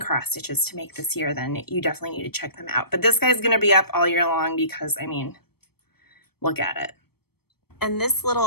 stitches to make this year, then you definitely need to check them out. But this guy's going to be up all year long because, I mean, look at it. And this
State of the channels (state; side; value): late; right; 0.96 ms